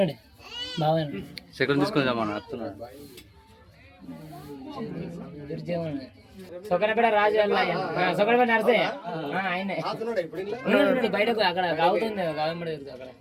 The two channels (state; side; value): identical; both; correlation 1.00